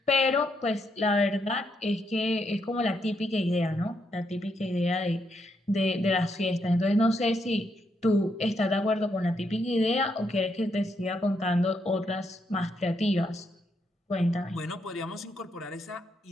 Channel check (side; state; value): both; normal; correlation 0.78